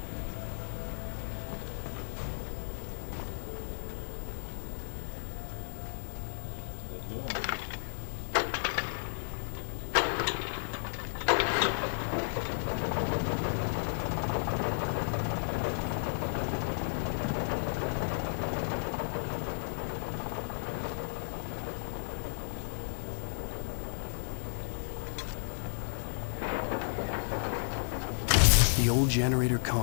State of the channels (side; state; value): right; silent; digital silence